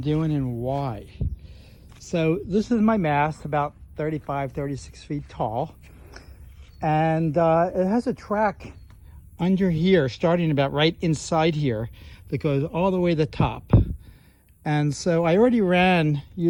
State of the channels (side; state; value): both; identical; correlation 1.00